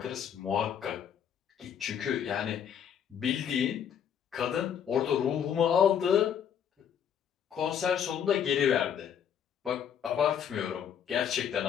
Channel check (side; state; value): right; quieter; 8.5 dB